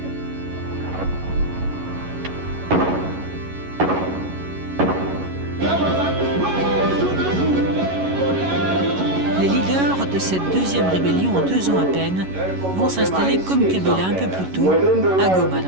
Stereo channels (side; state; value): left; late; 11 ms